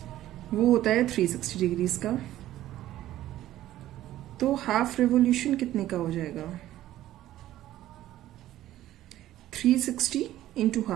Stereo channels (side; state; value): left; quieter; 13.9 dB